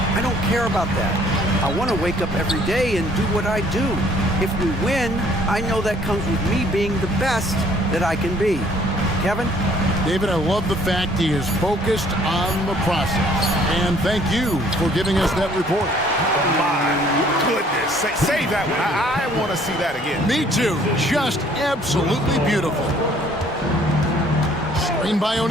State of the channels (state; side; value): normal; both; correlation 0.60